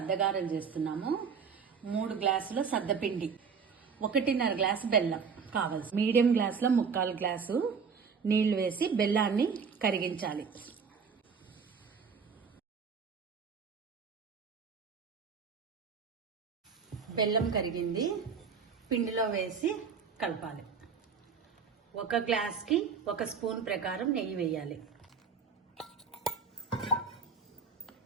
చేస్తున్నాము. 3 గ్లాసుల సద్దపిండి, 1.5 గ్లాసు బెల్లం కావాల్సి, మీడియం గ్లాసులో 3/4 గ్లాసు నీళ్లు వేసి బెల్లాన్ని కరిగించాలి. బెల్లం కరిగింది, పిండిలో వేసి కలపాలి. 1 గ్లాస్కి 1 స్పూన్ ప్రకారం నెయ్యి వేయాలి.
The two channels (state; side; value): quieter; left; 5.9 dB